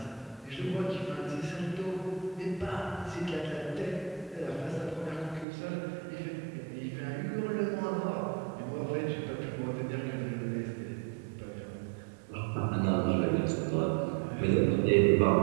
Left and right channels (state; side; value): drops out; left; at 5.5 s